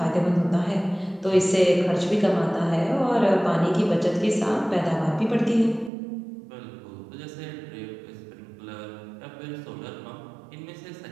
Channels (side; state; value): left; drops out; at 5.9 s